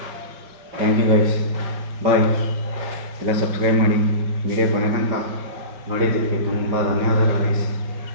ಥ್ಯಾಂಕ್ ಯು ಗೈಸ್, ಬಾಯ್. ಎಲ್ಲ ಸಬ್ಸ್ಕ್ರೈಬ್ ಮಾಡಿ, ವಿಡಿಯೋ ಕೊನೆ ತನಕ ನೋಡಿದ್ದಕ್ಕೆ ತುಂಬ ಧನ್ಯವಾದಗಳು ಗೈಸ್.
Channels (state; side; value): late; left; 5.3 ms